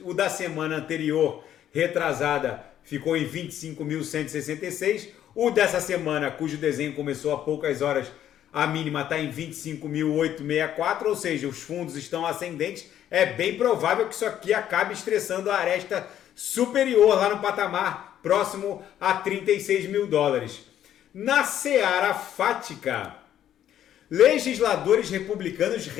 O da semana anterior, retrasada, ficou em 25.166. O dessa semana, cujo desenho começou há poucas horas, a mínima está em 25.864, ou seja, os fundos estão ascendentes. É bem provável que isso aqui acabe estressando a aresta superior lá no patamar próximo a 36 mil dólares. Na seara fática, legisladores republicanos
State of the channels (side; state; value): right; quieter; 10.9 dB